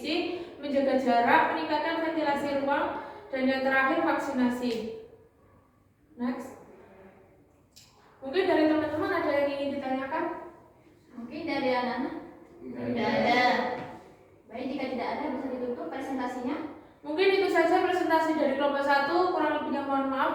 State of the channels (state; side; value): identical; both; correlation 1.00